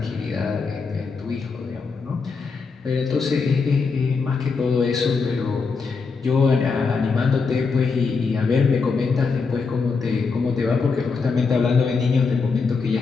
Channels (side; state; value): right; quieter; 4.8 dB